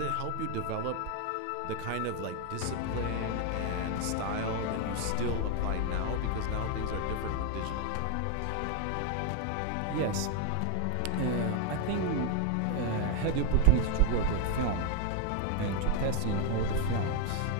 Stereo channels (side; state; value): both; different; correlation 0.00